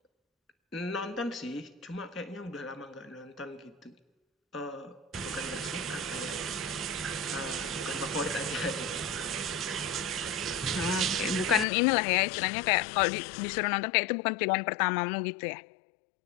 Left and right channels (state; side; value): drops out; right; at 11.7 s